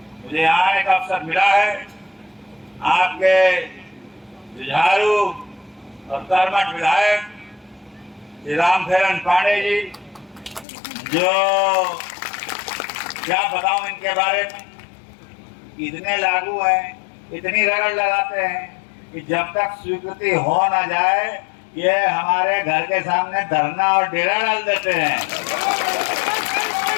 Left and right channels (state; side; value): drops out; right; at 10.7 s